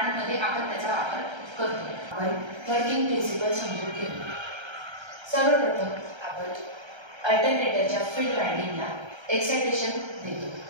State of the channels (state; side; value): late; left; 1.3 ms